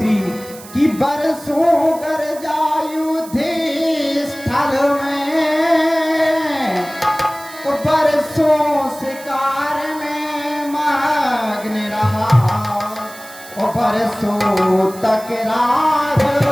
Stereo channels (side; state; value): right; noise; hiss, 18 dB below the sound